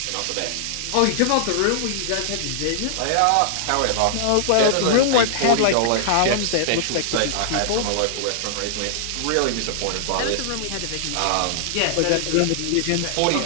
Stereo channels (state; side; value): different; both; correlation -0.01